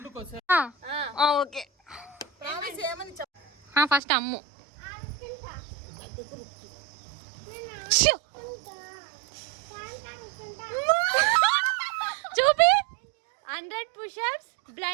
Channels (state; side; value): drops out; left; at 4.0 s